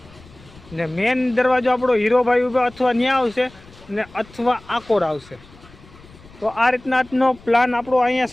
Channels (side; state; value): left; noise; rumble, 23 dB below the sound